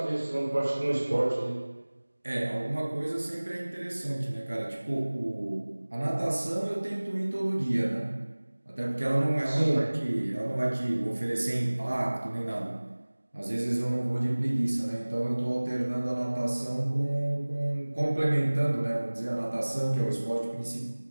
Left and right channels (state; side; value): inverted; both; correlation -1.00